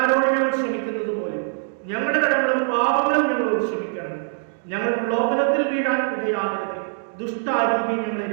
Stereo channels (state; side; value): silent; left; digital silence